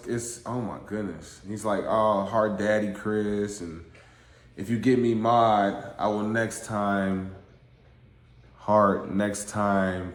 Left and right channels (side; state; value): both; identical; correlation 1.00